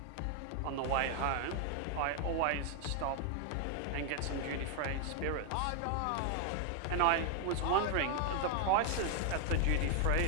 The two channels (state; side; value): different; both; correlation 0.01